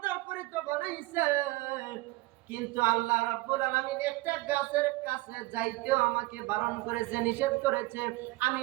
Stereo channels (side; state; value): left; quieter; 21.0 dB